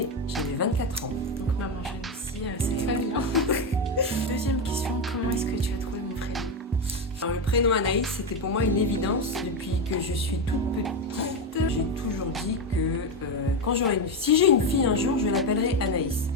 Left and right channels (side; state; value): both; normal; correlation 0.11